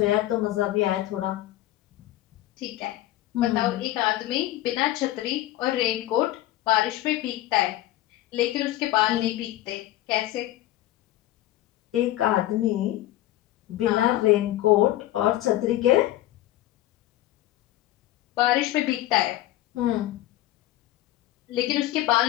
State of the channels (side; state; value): right; quieter; 15.0 dB